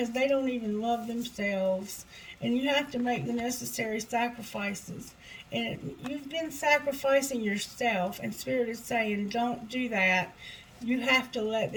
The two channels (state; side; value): identical; both; correlation 1.00